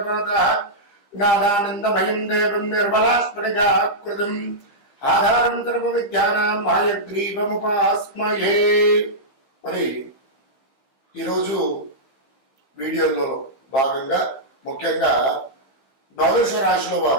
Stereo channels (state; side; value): late; right; 15 ms